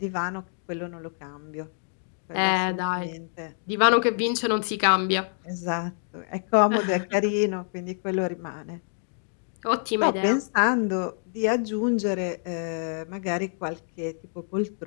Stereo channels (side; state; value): right; silent; 59 dB below the other